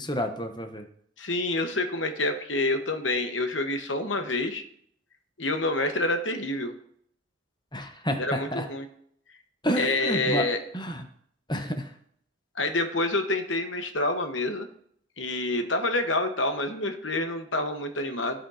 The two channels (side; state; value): both; normal; correlation 0.12